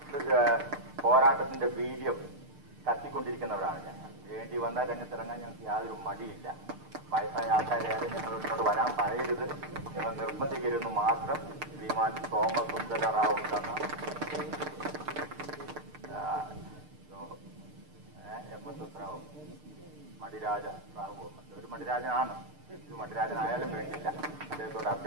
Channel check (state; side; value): late; left; 6.6 ms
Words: പോരാട്ടത്തിന്റെ വീര്യം കത്തിക്കൊണ്ടിരിക്കുന്നവരാണ് ഞങ്ങൾ. വേണ്ടി വന്ന രംഗത്തിറങ്ങാൻ ഞങ്ങൾക്ക് യാതൊരു മടിയില്ല. വയസ്സായ ആൾക്കാരെ ഞങ്ങളോട് വരാൻ പറയരുത്, നിങ്ങൾ നിർബന്ധിക്കരുതെന്ന് മാത്രം ശ്രീമാൻ സോമസുന്ദര റാവു തന്ന MS റാവു, മടിരാജ റാവു, ഒരു മടിരാജനാണ്. മടിരാജനായാലും വേണ്ടില്ല. അദ്ദേഹത്തോട്